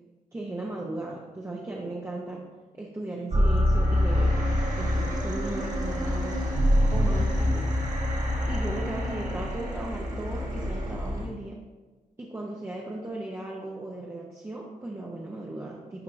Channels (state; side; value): normal; both; correlation 0.89